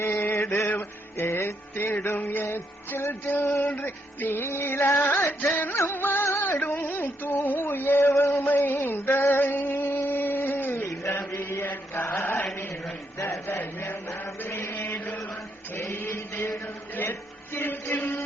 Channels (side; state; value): both; normal; correlation 0.77